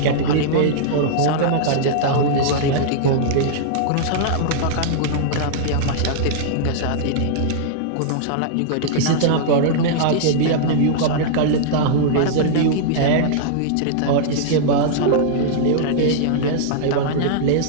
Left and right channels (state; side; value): different; both; correlation -0.02